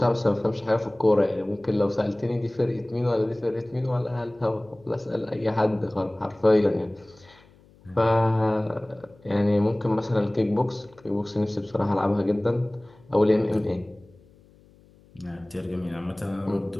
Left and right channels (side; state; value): left; noise; hum, 28 dB below the sound